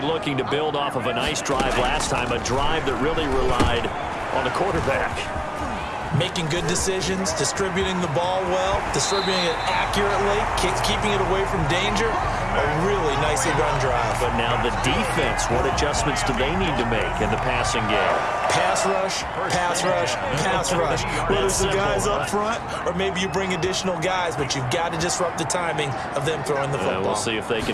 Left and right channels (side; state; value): both; identical; correlation 1.00